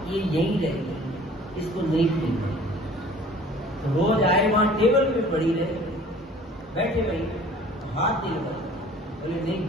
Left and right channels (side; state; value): both; normal; correlation 0.49